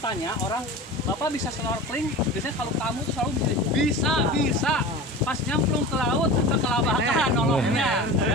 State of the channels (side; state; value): both; normal; correlation 0.33